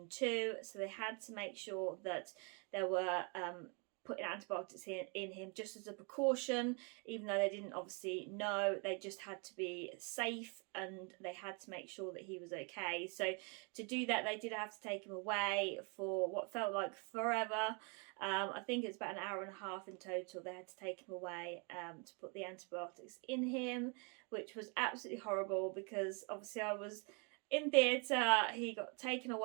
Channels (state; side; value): quieter; left; 34.8 dB